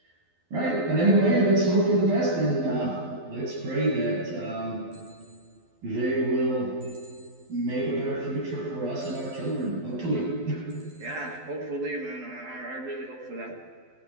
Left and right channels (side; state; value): left; late; 12 ms